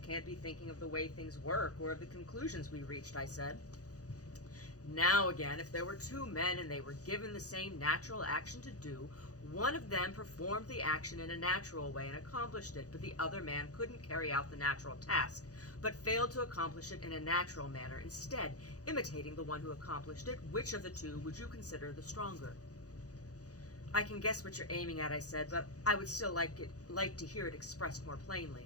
can't be thinking of the way things work or of the conclusions we reached, I said. Now again, if there were two men and they were given the same natural action to do, one of them performed the action in a natural way and accomplished it, but the other man couldn't carry out the natural task, but failed to accomplish it in a natural manner, instead imitating the one who accomplished it. Which of the two would you consider the stronger? I can guess what you're aiming at, I said, but I would still like to hear it expressed more plainly.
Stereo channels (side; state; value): right; late; 0.67 ms